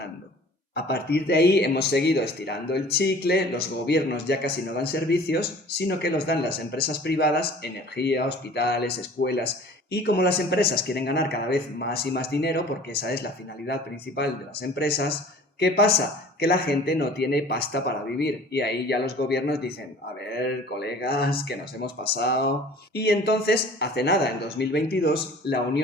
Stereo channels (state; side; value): normal; both; correlation 0.47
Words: A partir de ahí hemos seguido estirando el chicle, los gobiernos ya casi no dan servicios, sino que los dan las empresas privadas, energía, hospitales, escuelas, y como las empresas quieren ganar cada vez más y más dinero, porque esa es la finalidad principal de las empresas, ¿qué pasa? Que la gente no tiene pasta para vivir y ahí ya los gobiernos dicen, a ver, colegas, que nos hemos pasado. Y entonces, hace nada, en 2022, la